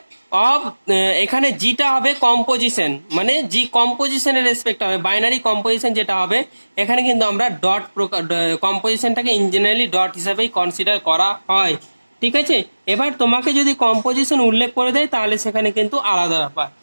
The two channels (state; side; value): inverted; both; correlation -1.00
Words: এখানে জিটা হবে কম্পোজিশন, মানে জি কম্পোজিশনের রেসপেক্ট হবে, বাইনারি কম্পোজিশন যেটা হবে এখানে কিন্তু আমরা ডট কম্পোজিশনটাকে ইন জেনারেলি ডট হিসাবেই কনসিডার করা হয়, ঠিক আছে? এবার তোমাকে যদি কম্পোজিশন উল্লেখ করে দেয় তাহলে সেখানে কিন্তু আলাদা ব্যাপার।